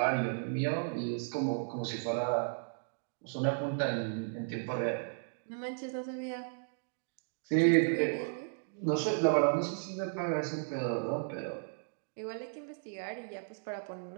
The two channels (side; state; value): left; silent; digital silence